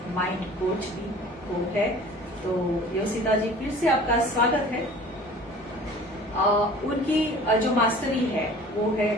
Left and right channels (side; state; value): both; normal; correlation 0.45